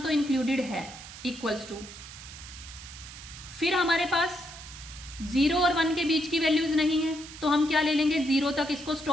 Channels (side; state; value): right; noise; hiss, 14 dB below the sound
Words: तो इंक्लूडेड है, इक्वल्स टू, फिर हमारे पास 0 और 1 के बीच की वैल्यूज नहीं है तो हम क्या ले लेंगे, 0 तक इसको